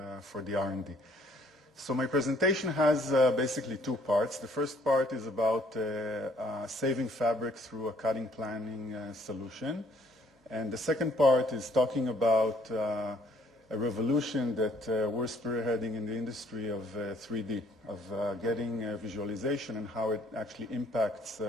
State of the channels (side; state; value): both; normal; correlation 0.62